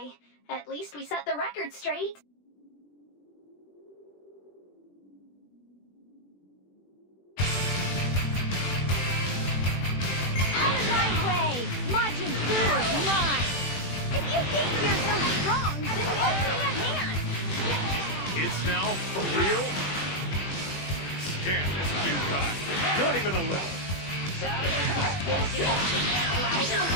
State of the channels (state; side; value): late; right; 21 ms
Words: At least we set the record straight. Out of my way! Majin Bu is mine! If you think you're so strong, then lend me a hand! It's now? For real? Damn this new guy. Not even a little.